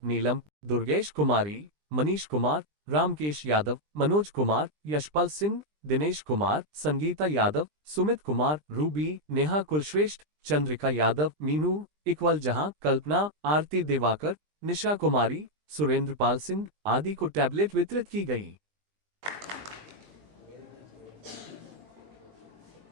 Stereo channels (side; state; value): left; late; 20 ms